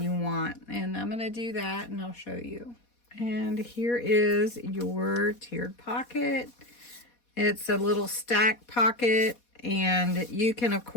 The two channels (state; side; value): late; right; 4.2 ms